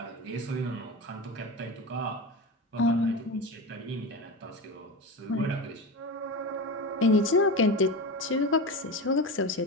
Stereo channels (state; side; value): normal; both; correlation 0.24